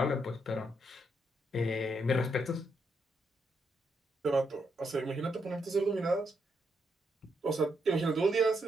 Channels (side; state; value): both; normal; correlation 0.79